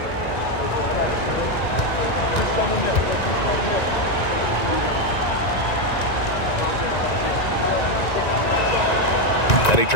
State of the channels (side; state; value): right; late; 1.9 ms